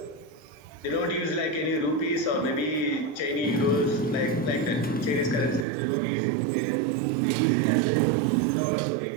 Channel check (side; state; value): left; drops out; at 5.7 s